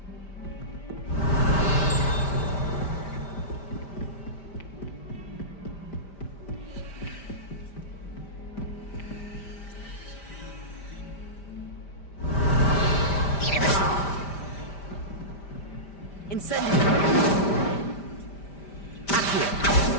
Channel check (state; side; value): late; right; 5.1 ms